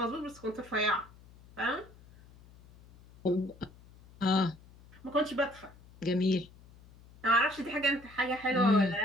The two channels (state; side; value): noise; left; hum, 24 dB below the sound